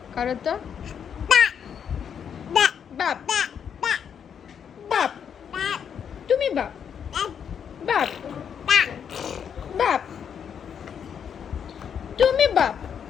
করো তো। বাপ বাপ, তুমি বাপ বাপ বাপ, তুমি বাপ।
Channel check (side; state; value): right; quieter; 7.8 dB